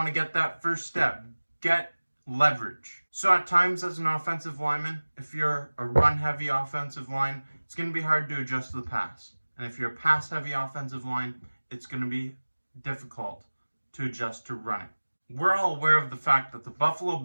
to get that first step, get leverage. So at times as an offensive lineman, if you're a run-heavy offensive line, it's going to be hard to adjust to the pass. And if you're a pass-heavy offensive line, it's going to be difficult to adjust to running. We're all aware of the fact that the Buffalo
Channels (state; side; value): inverted; both; correlation -1.00